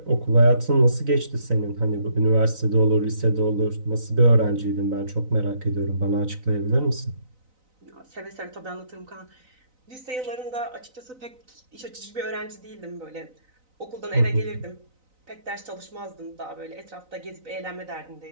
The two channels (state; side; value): late; left; 3.9 ms